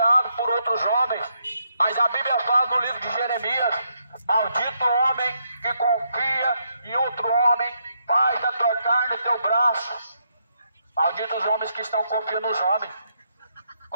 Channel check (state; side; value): inverted; both; correlation -0.77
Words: por outros homens, mas a Bíblia fala no livro de Jeremias: maldito homem que confia em outro homem, faz da tua carne o teu braço. Malditos os homens que estão confiando nos homens.